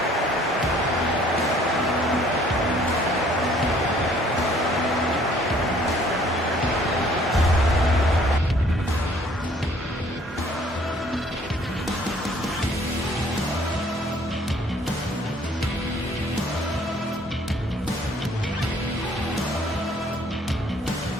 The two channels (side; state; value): both; normal; correlation 0.59